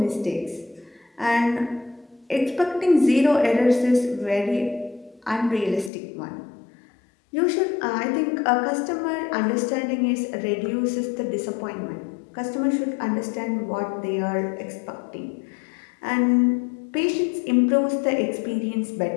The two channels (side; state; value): right; drops out; at 5.9 s